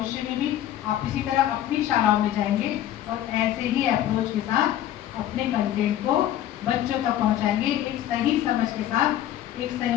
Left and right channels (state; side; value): quieter; right; 12.1 dB